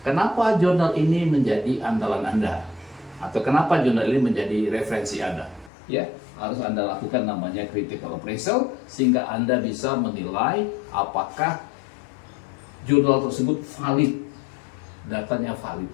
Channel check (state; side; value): drops out; right; at 5.7 s